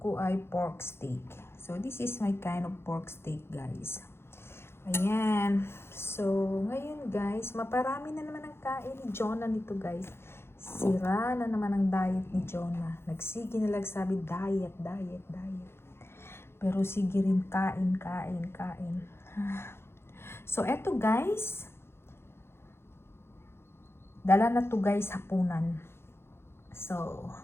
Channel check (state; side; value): late; right; 0.12 ms